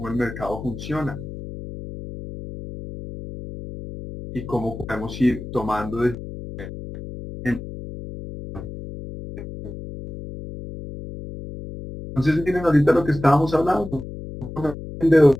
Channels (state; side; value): noise; left; hum, 11 dB below the sound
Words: el mercado funciona y cómo podemos ir tomando entonces miren ahorita lo que estábamos hablando.